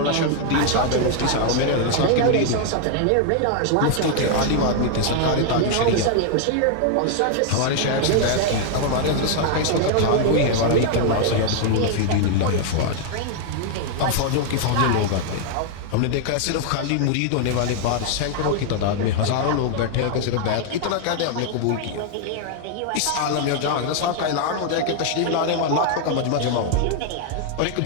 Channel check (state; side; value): different; both; correlation 0.00